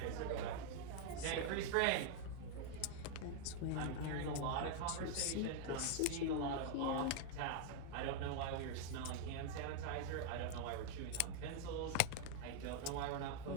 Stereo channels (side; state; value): both; different; correlation 0.00